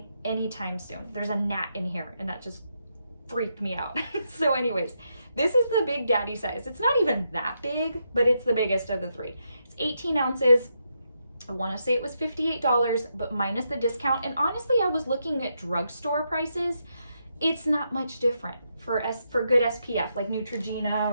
anytime soon. There's a gnat in here and that just freaked me out. So anyways, this is the Big Daddy size. It's not even that big, but it's the biggest of the 3. It's 18 ounces. I want to say it was $58, but minus the discount. And honestly, I was looking at drugstore prices. It's not much different for good SPF, like Neutrogena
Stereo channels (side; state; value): both; inverted; correlation -0.81